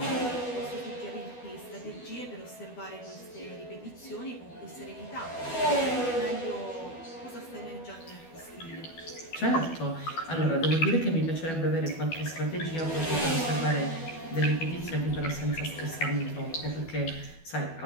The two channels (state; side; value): late; right; 12 ms